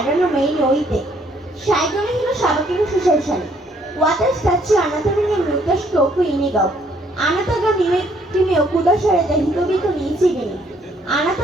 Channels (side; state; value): both; normal; correlation 0.66